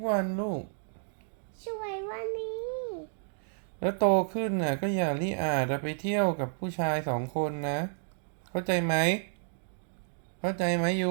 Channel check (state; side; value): silent; left; digital silence